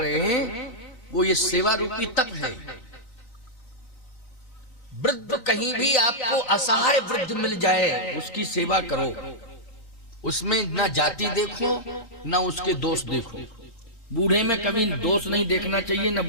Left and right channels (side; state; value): right; late; 3.9 ms